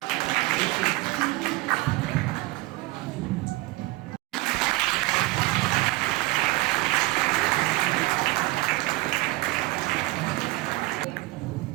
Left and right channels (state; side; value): quieter; left; 20.4 dB